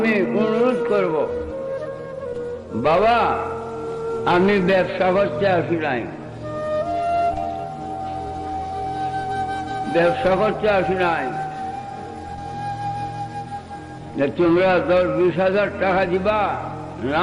অনুরোধ করব, বাবা আমি ব্যবসা করতে আসি নাই, ব্যবসা করতে আসি নাই যে তোমরা 10-20 হাজার টাকা দিবা,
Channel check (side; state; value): both; identical; correlation 1.00